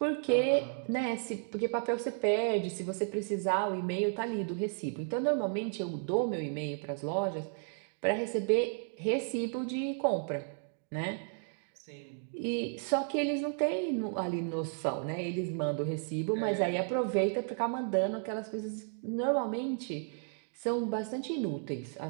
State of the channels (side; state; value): left; silent; 55 dB below the other